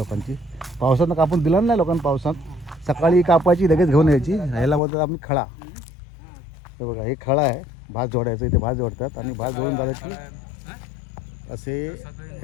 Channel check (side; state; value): right; drops out; at 4.8 s